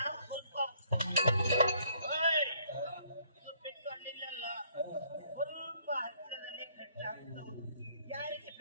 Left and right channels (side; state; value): both; inverted; correlation -0.65